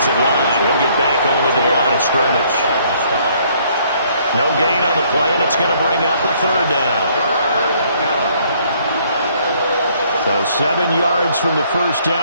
line. He'll get back only to the line of scrimmage. No gain on the play, and it's going to bring up a third down. So 7 yards from the first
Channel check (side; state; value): both; inverted; correlation -0.64